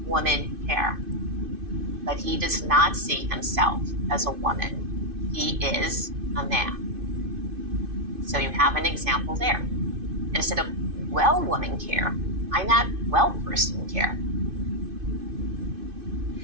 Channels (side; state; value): left; late; 2.6 ms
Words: woman care, but he does not see himself as a woman. He is a man. So you have an example there. Instead of well woman care, I'm not well person care.